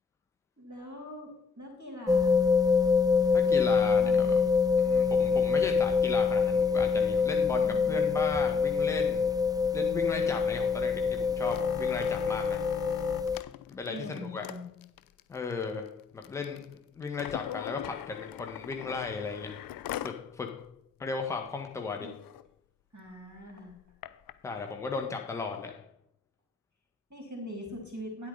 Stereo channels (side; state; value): right; quieter; 5.2 dB